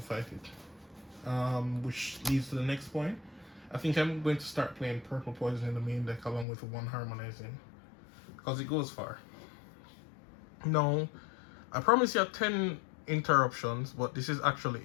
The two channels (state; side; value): drops out; right; at 6.5 s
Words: fight it. Which leads to the next point. I think I'm going to start playing Purple Poison in the main deck along with one Harmonizing. Because it goes far. No. I promise you 10 interruptions, but this is actually